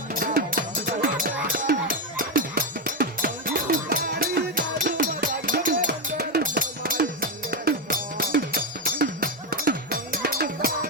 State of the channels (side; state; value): both; normal; correlation 0.08